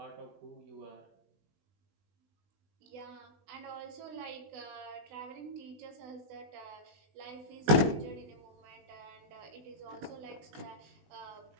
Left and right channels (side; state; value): left; late; 19 ms